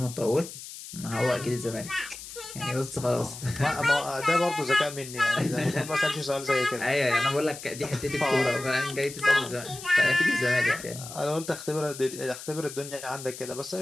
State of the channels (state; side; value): noise; left; hiss, 12 dB below the sound